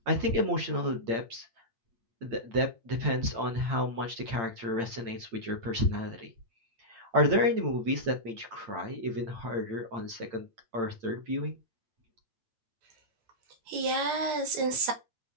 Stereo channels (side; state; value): left; late; 8.8 ms